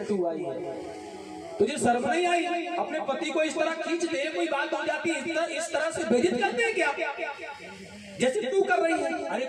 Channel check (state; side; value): identical; both; correlation 1.00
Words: तू आई है, तुझे शर्म नहीं आई? अपने पति को इस तरह खींच दे, कोई बात हो जाती है इस तरह से बेइज्जत करते हैं क्या जैसे तू कर रही है? अरे